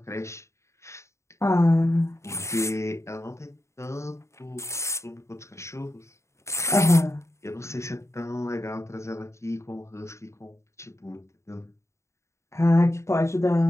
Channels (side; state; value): right; late; 0.14 ms